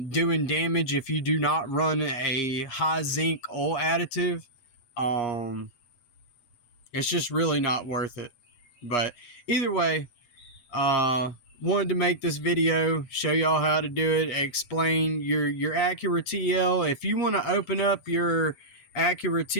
damage if you do not run a high zinc oil additive. It's just really not worth it. But either way, wanted to make this video, show y'all how to do it, explain your Acura TL. If you want to open up your Acura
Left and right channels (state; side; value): late; right; 7.4 ms